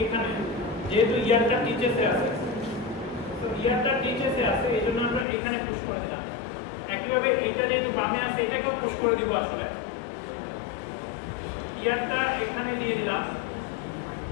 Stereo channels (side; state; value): right; drops out; at 5.2 s